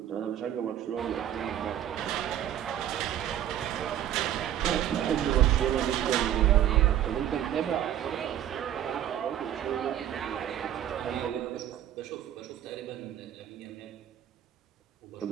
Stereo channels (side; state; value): left; quieter; 11.0 dB